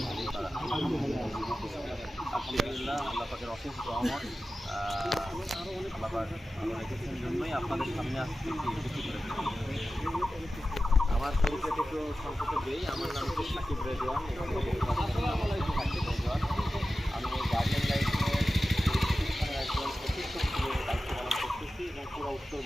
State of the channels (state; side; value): normal; both; correlation 0.94